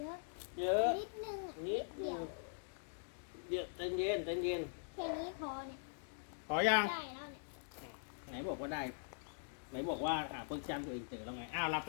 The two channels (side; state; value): right; silent; digital silence